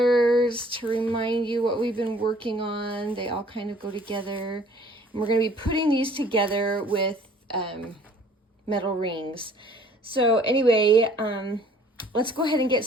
to remind you what we've been working on. They all kind of go together. And we're going to be putting these together with metal rings. So anyway, let's go ahead and get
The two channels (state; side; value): normal; both; correlation 0.55